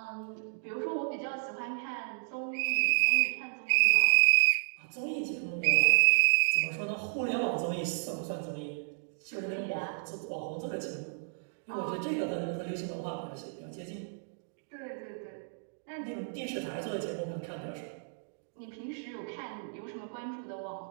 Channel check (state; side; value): silent; left; digital silence